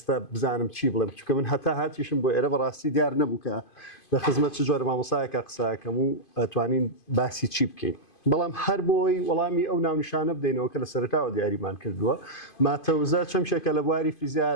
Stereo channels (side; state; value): right; late; 2.5 ms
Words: بزانم چی بڵێم چونکە من هەتا هاتیشم بۆ ئێرە بەڕاستی دیار نەبوو کە لە خزمەت چ جۆرە مامۆستایەکە قساکەم و ئەتوانین باسی چی بکەین بەڵام هەر بۆی وەڵامی ئەو ناونیشانە بدەینەوە کە لە سەرەتاوە دیاریمان کردووە ماتەوزە چەمشێکە لە بواری فیزیای